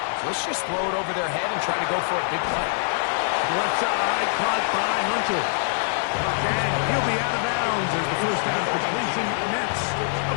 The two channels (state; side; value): silent; right; 62 dB below the other